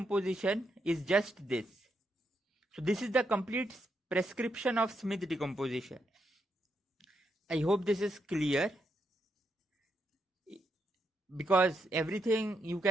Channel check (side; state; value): both; normal; correlation 0.80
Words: is just this. So this is the complete prescription of Smith decomposition. I hope this is clear, because everything you